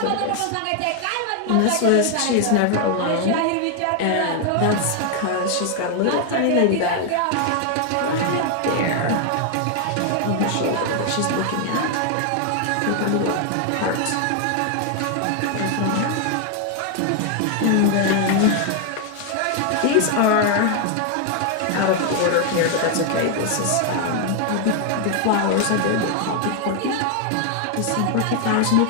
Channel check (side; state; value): both; different; correlation 0.00